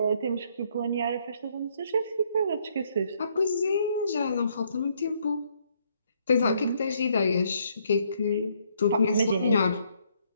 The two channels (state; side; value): inverted; both; correlation -0.70